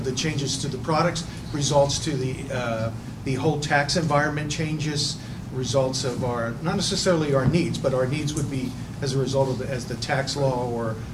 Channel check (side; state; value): both; identical; correlation 1.00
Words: the changes to the products, results to the whole tax environment changes, results of our, not necessarily our needs, but our needs would be as a result of as the tax law